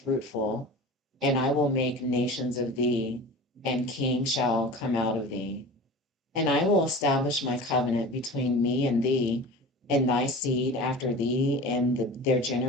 and I will make nations of thee, and kings shall come out of thee. And I will establish my covenant between me and thee, and thy seed after thee, and their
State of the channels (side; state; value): both; normal; correlation 0.36